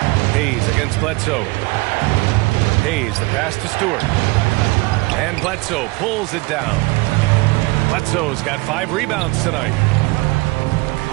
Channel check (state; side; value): quieter; left; 24.1 dB